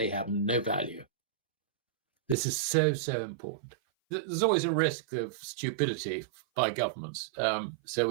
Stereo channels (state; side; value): drops out; left; at 2.4 s